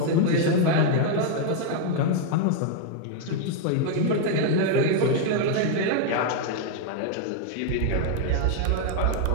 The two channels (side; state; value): both; different; correlation 0.00